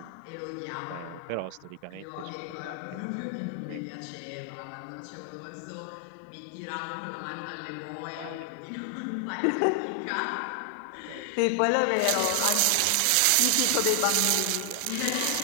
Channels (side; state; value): both; different; correlation 0.00